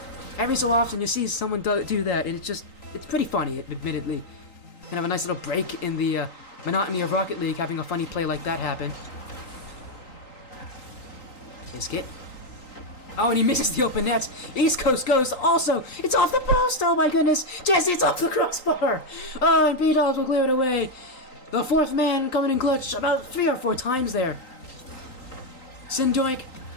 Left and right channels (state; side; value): late; right; 3.9 ms